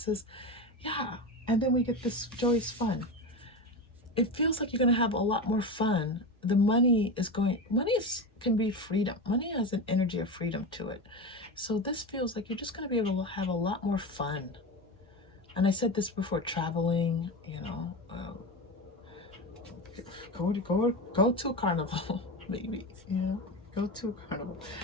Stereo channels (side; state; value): both; normal; correlation 0.22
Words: Yeah, and then we get this joyous fun. It feels like you're going to have a lot more fun. The money can be freedom. Money has an energy of freedom to it. So this feels like you're just going to be able to have a lot more fun. And I said this before, traveling, you know, go to a carnival, maybe, you know, go to a carnival.